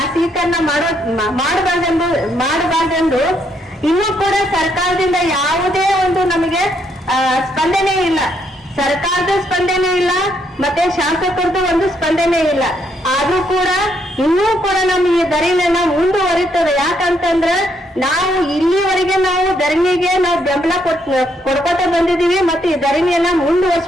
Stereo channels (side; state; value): both; normal; correlation 0.74